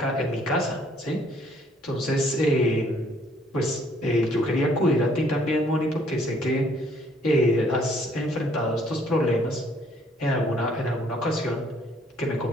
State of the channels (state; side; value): normal; both; correlation 0.63